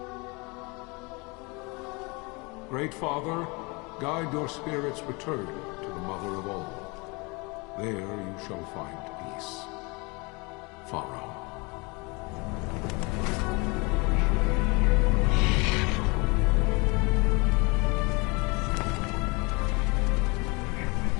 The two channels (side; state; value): right; quieter; 28.1 dB